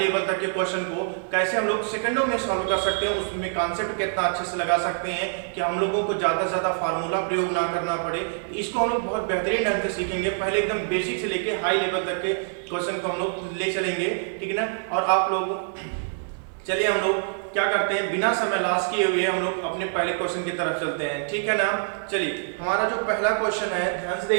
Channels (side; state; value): left; silent; digital silence